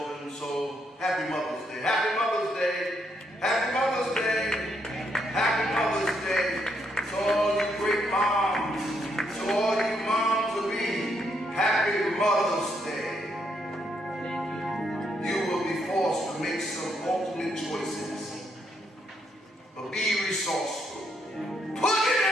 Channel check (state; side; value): normal; both; correlation 0.76